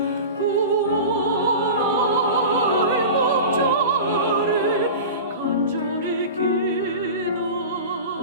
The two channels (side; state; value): both; inverted; correlation -0.31